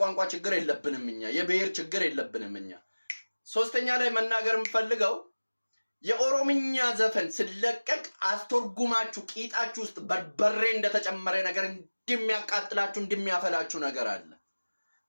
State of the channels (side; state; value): both; inverted; correlation -1.00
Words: ችግር የለብንም እኛ፣ የብሔር ችግር የለብንም እኛ። ሶስተኛ ላይ መናገር የምፈልገው የኦሮምኛ ዘፈን ስለቀቅ አስተርጉማችሁ ቂጣችሁ ውስጥ በርበሬ እንደተጨመረ ነገር እንደሚያቃጥላችሁ እንደሚያፈላችሁ ነገር አለ።